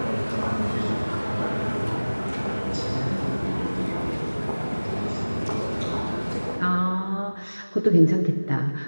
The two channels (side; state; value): both; inverted; correlation -1.00